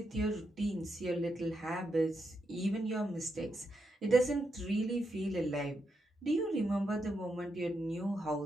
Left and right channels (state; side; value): normal; both; correlation 0.83